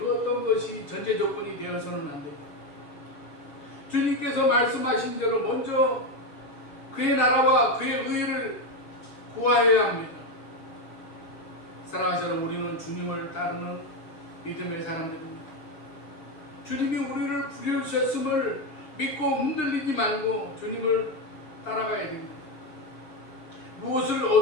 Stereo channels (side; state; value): right; late; 6.5 ms